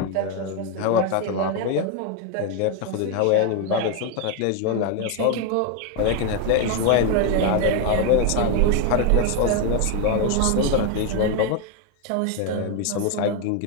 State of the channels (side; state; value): both; different; correlation 0.01